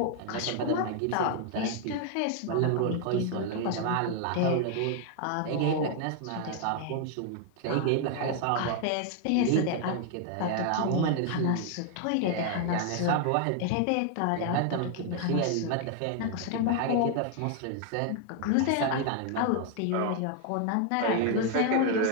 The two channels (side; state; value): both; different; correlation 0.00